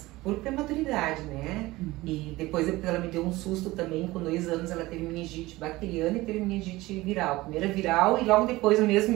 por prematuridade, né? E depois ela me deu um susto também, com 2 anos ela teve meningite bacteriana e teve meningite viral. Primeira viral e logo depois, no mesmo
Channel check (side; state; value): left; quieter; 19.3 dB